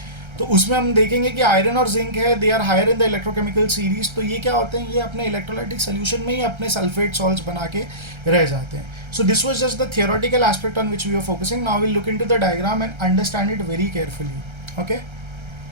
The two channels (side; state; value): left; late; 1.3 ms